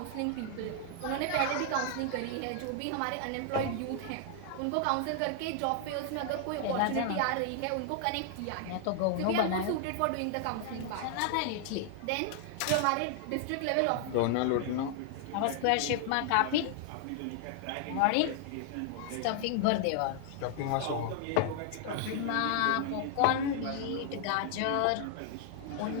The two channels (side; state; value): both; different; correlation 0.00